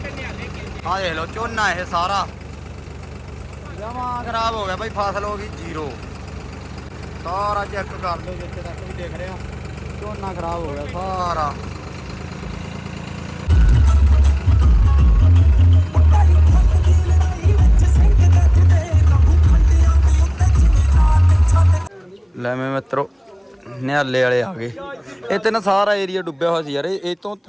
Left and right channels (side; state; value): both; identical; correlation 1.00